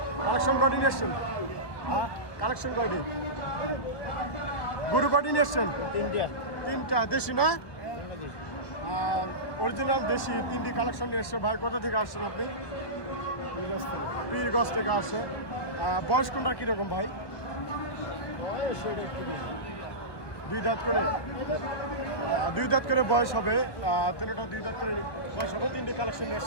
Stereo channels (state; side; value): late; right; 1.2 ms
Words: কালেকশন কয়টি নিয়ে এসছেন? কালেকশন কয়টি? গরু কয়টি নিয়ে এসছেন? 3টা। দেশি না? অরিজিনাল দেশি 3টি কালেকশন নিয়ে এসছে। ভাই কোথা থেকে আসছেন আপনি? পীরগঞ্জ থেকে আসছে। বয়স কোনটা কীরকম ভাই? 2 দাঁত করে। 2 দাঁত করে বয়স হবে। 3টা 2 দাঁত করে বয়স হবে। 3টি কালেকশন নিয়ে